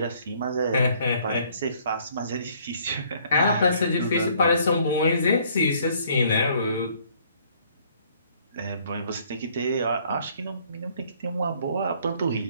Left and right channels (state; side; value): inverted; both; correlation -0.62